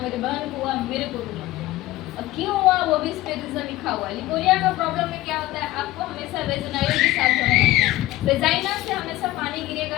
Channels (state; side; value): quieter; right; 16.7 dB